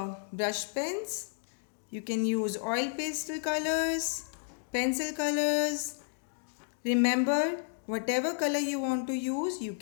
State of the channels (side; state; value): right; silent; digital silence